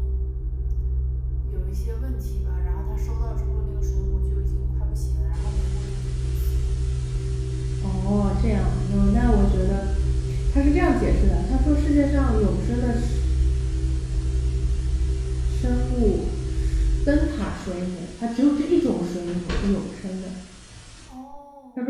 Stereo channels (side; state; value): both; identical; correlation 1.00